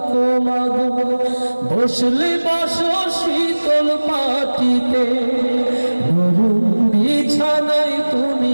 মাগো, বসলে বসো শীতল পাটিতে, নরম বিছানায়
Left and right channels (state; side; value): inverted; both; correlation -1.00